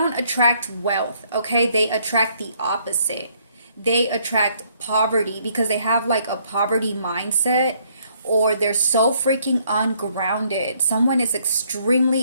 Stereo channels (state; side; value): inverted; both; correlation -0.68